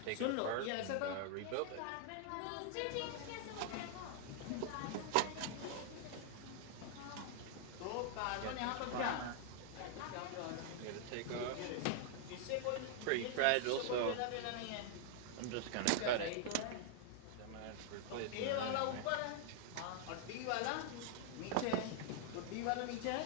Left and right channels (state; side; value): different; both; correlation -0.01